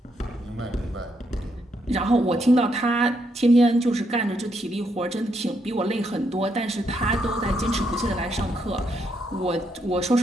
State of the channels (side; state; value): both; normal; correlation 0.77